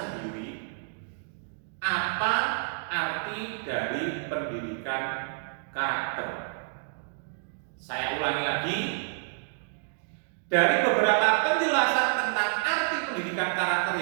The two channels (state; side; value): silent; left; digital silence